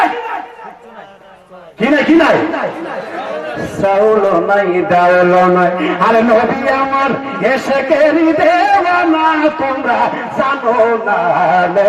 নাই চাউলও নাই, ডাউলও নাই। আরে নবী আমার এসে কেরি দেওয়ানা, তোমরা জানো না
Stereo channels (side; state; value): both; identical; correlation 1.00